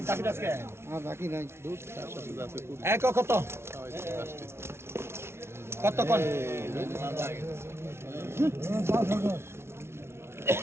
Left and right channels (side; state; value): left; late; 0.12 ms